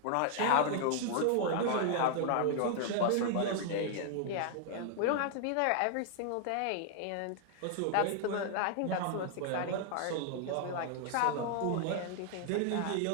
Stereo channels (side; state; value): both; different; correlation 0.00